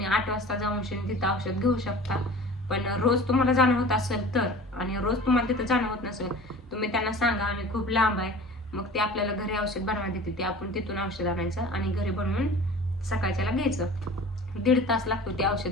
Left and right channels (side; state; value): both; normal; correlation 0.41